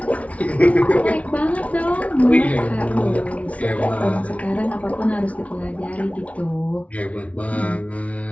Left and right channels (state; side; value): late; right; 0.066 ms